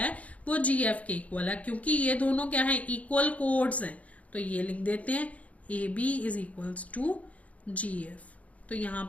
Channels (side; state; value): right; late; 0.068 ms